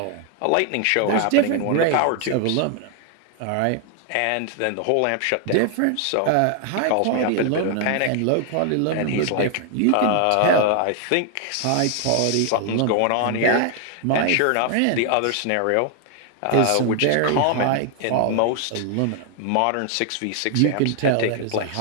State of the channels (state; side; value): different; both; correlation 0.00